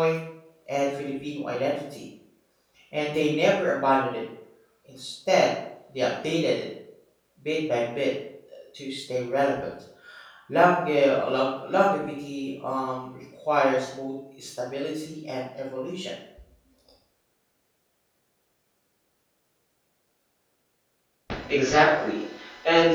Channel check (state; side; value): identical; both; correlation 1.00